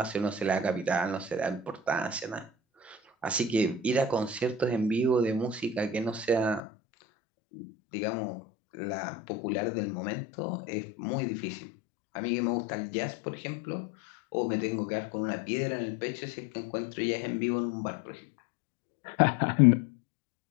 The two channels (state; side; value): drops out; right; at 6.6 s